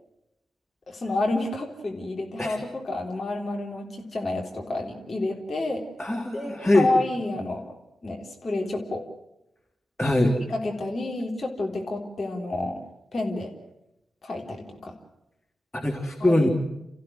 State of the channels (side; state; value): both; normal; correlation 0.94